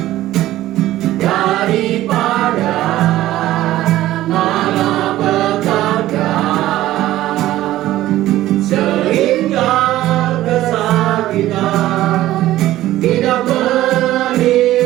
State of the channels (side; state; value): left; quieter; 14.9 dB